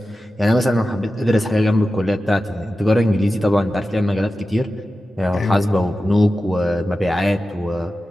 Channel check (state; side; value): normal; both; correlation 0.93